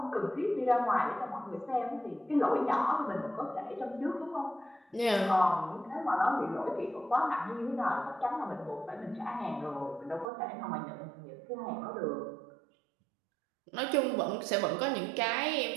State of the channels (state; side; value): drops out; left; at 10.3 s